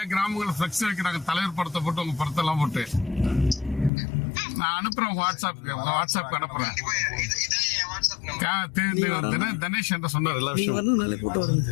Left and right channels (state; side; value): drops out; right; at 3.9 s